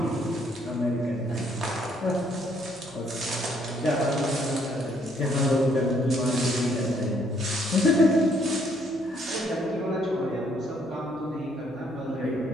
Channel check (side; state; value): left; noise; hum, 30 dB below the sound